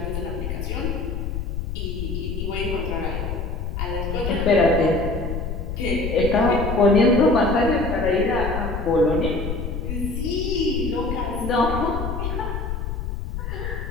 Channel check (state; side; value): noise; left; rumble, 4 dB below the sound